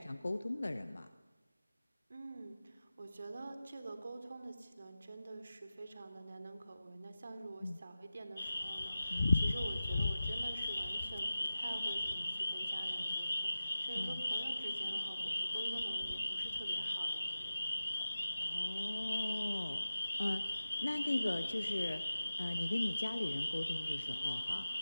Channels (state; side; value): inverted; both; correlation -0.96